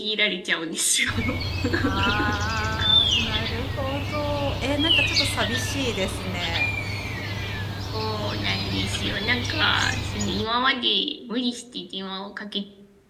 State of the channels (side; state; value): both; identical; correlation 1.00